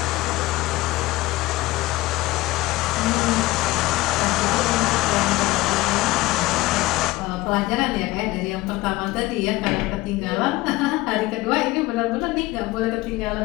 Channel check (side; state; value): right; quieter; 19.0 dB